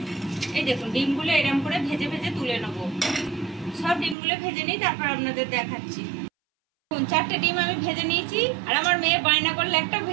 এই দেখুন ডিমগুলো এরকম করে ভেজে ভেজে তুলে নেবো। সব ডিমগুলো ভেজে নিই, তারপর আপনাদের দেখাচ্ছি। 4টে ডিম আমি ভেজে নিয়েছি, আর আমার মেয়ে বায়না করলে একটা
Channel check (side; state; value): left; drops out; at 4.2 s